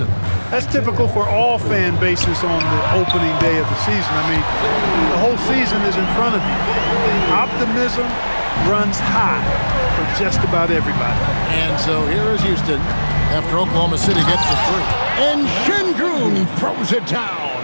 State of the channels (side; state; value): both; inverted; correlation -1.00